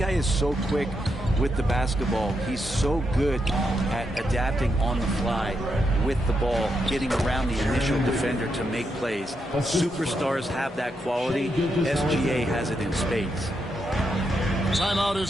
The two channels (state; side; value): normal; both; correlation 0.82